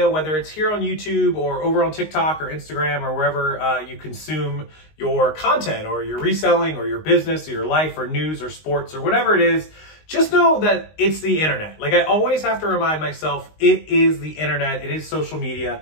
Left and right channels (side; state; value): right; late; 19 ms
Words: whether it's here on YouTube or over on TikTok or Instagram or wherever you consume your content or your reselling or your business or your life or news or sports or whatever it is, just know that it's the internet. Like I always have to remind myself, it is the internet, it is social media,